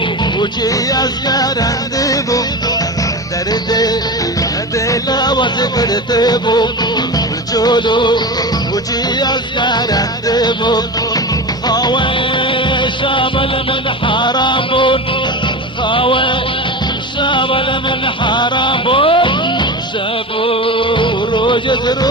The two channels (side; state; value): both; normal; correlation 0.26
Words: وجي أزكارندبو دردي ديلا وزبرتبو تشولو وجي أزكارندبو خاوي شامل من حرامون خاوي شامل من حرامون شافوا روج